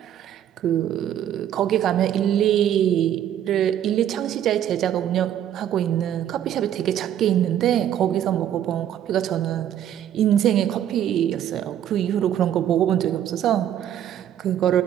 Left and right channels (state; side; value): quieter; left; 10.5 dB